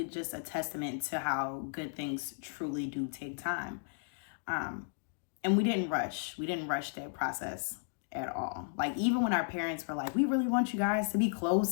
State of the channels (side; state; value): right; silent; digital silence